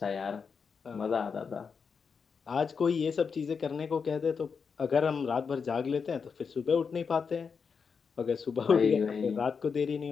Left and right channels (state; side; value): quieter; right; 5.8 dB